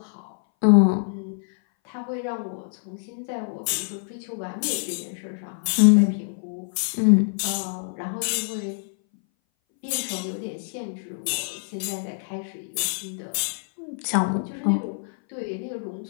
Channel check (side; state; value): right; silent; 59 dB below the other